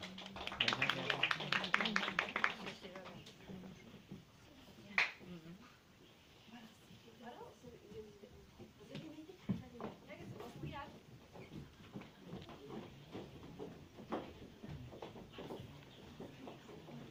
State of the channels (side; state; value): both; identical; correlation 1.00